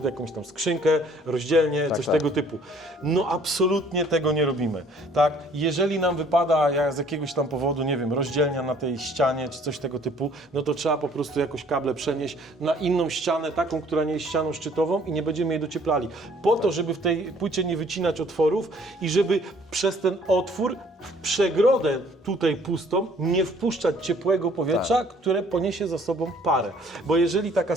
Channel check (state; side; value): normal; both; correlation 0.58